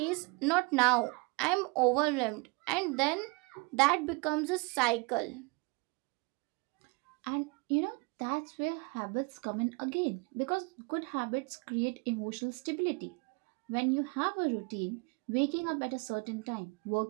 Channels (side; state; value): left; quieter; 29.3 dB